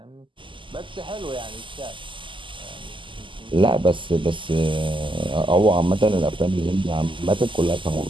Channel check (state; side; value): late; left; 0.25 ms